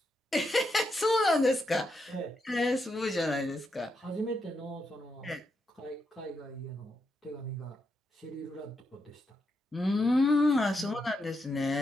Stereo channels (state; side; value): normal; both; correlation 0.83